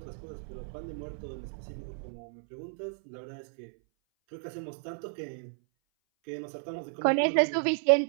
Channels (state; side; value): silent; left; 56 dB below the other